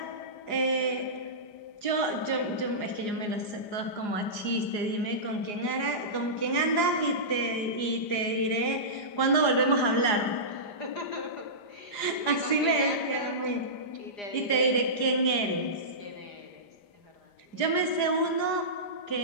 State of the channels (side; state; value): right; late; 4.9 ms